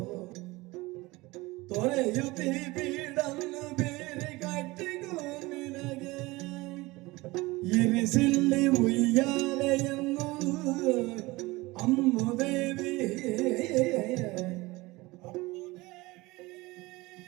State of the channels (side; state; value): left; quieter; 21.5 dB